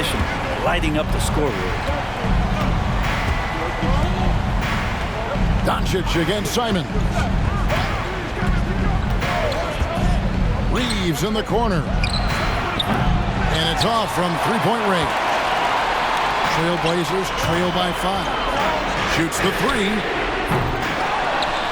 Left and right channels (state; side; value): identical; both; correlation 1.00